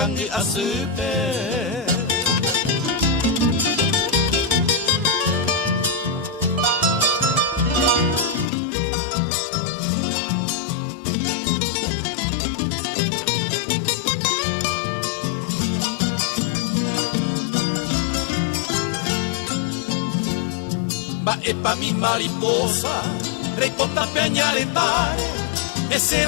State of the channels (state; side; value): drops out; right; at 8.5 s